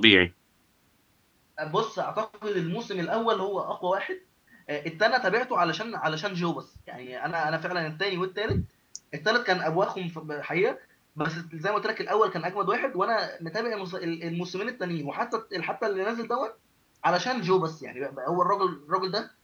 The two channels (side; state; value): both; identical; correlation 1.00